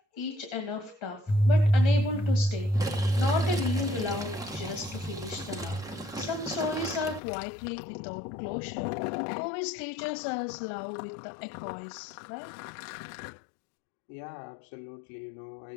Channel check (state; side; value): drops out; right; at 7.2 s